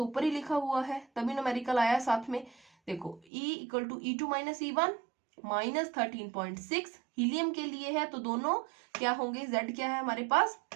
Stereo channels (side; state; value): left; drops out; at 3.2 s